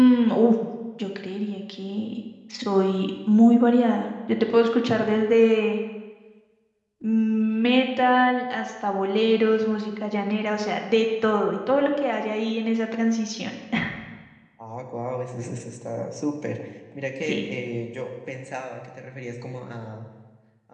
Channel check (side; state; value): both; identical; correlation 1.00